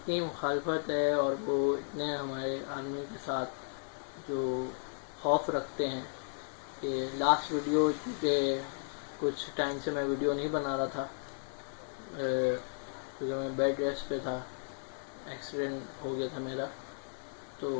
مخالفت ہے اور وہ اتنے ہمارے آرمی کے ساتھ جو خوف رکھتے ہیں کہ لاسٹ ویڈیو کے کچھ ٹائم سے میں ویڈیو نہیں بنا رہا تھا کیونکہ میں بیڈ ریسٹ پہ تھا، ایکسیڈنٹ ہو گیا تھا میرا، تو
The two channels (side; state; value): right; silent; digital silence